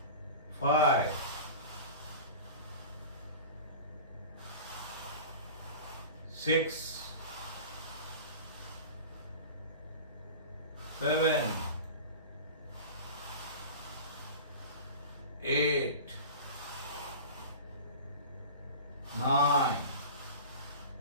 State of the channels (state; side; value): inverted; both; correlation -0.35